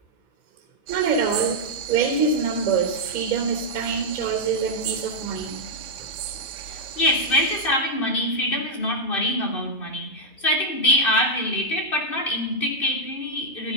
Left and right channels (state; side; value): late; right; 2.6 ms